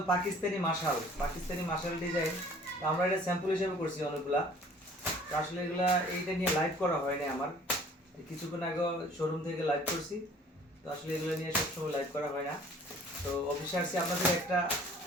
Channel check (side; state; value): both; normal; correlation 0.52